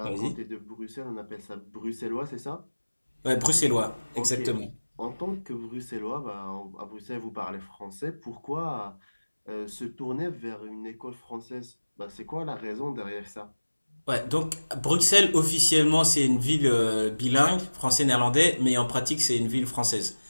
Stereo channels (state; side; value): inverted; both; correlation -1.00